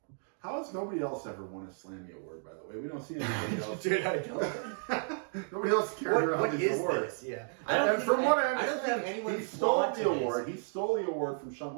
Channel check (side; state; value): left; silent; 56 dB below the other